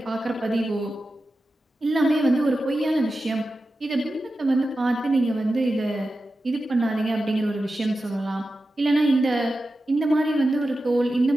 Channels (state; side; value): normal; both; correlation 0.92